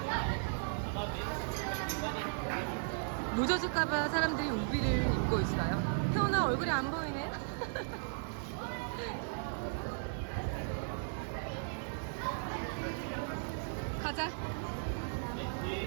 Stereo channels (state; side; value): silent; left; digital silence